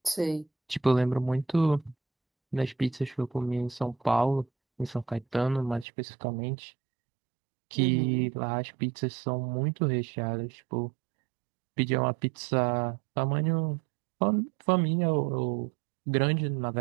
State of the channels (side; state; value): left; drops out; at 5.9 s